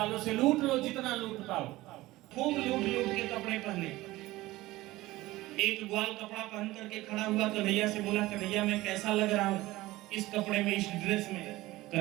से लूट लो जितना लूट पाओ। खूब लूट लूट के कपड़े पहने। एक ग्वाल कपड़ा पहन करके खड़ा हुआ, कन्हैया से बोला कन्हैया मैं कैसा लग रहा हूँ इस कपड़े में, इस ड्रेस में?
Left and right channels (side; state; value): left; quieter; 18.2 dB